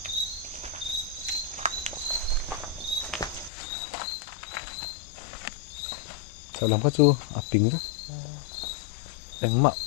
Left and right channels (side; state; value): right; drops out; at 3.5 s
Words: salam ka chu a ping ra engma